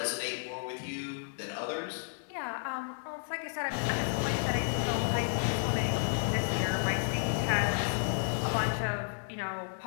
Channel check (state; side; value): silent; right; digital silence